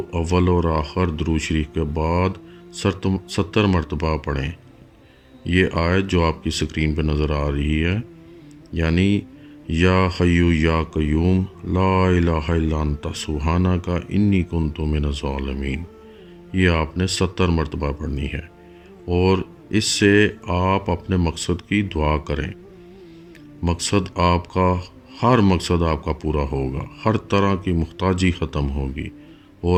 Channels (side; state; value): both; identical; correlation 1.00